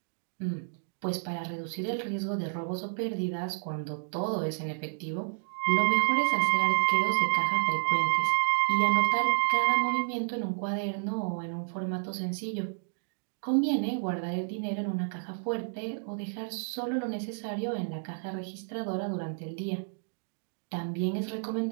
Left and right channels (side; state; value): left; silent; digital silence